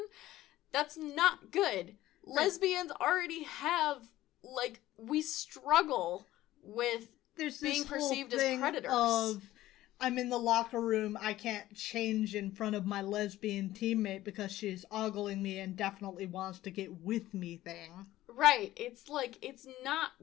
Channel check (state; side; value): quieter; right; 15.2 dB